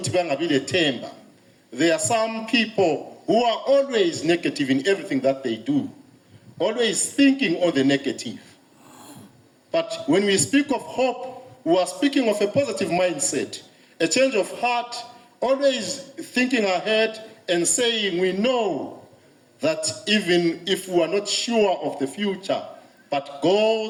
bangabi lethemba. There are some people who are always negative in everything that they do, always thinking on the negative. But when we speak of hope, we are speaking of a positive mindset, a change of heart, always thinking ahead and saying we know that even if we are not sure of the future, but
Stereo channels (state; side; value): identical; both; correlation 1.00